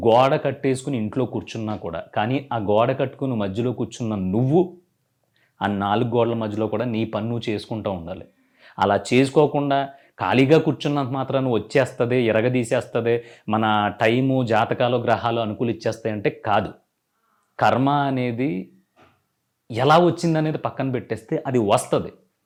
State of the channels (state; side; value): identical; both; correlation 1.00